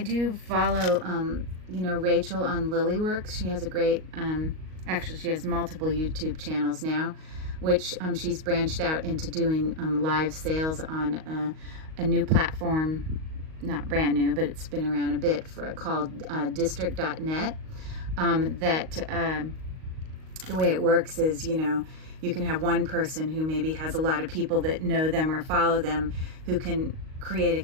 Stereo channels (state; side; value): late; left; 38 ms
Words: do follow, you know, Rachel on Lilyworks. She has a great, actually she has multiple YouTube channels now, which she's branched out into doing live sales on a new platform, not brand new, but it's been around a bit, called district.net. The way it works is, you know, you can have one person who maybe has a lot of people that know them or follow them who can create a